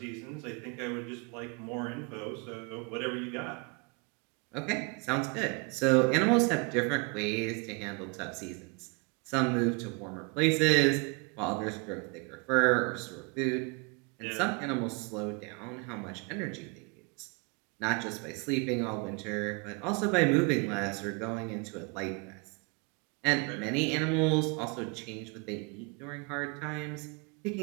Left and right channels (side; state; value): left; quieter; 31.8 dB